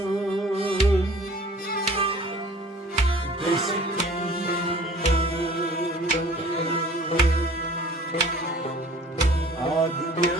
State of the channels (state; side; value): normal; both; correlation 0.49